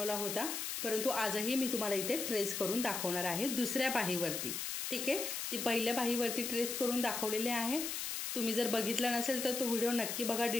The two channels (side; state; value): left; noise; hiss, 3 dB below the sound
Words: होता, परंतु आजही मी तुम्हाला इथे ट्रेस करून दाखवणार आहे दुसऱ्या बाहीवरती, ठीक आहे। ती पहिल्या बाहीवरती ट्रेस करून दाखवलेले आहे। तुम्ही जर बघितला नसेल तर तो व्हिडिओ नक्की बघा,